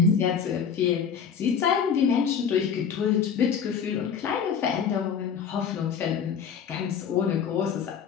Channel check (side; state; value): right; quieter; 7.1 dB